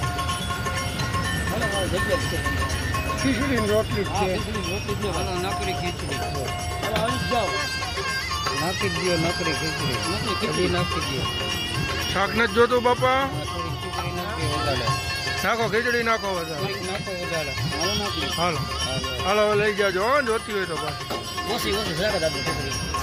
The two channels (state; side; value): identical; both; correlation 1.00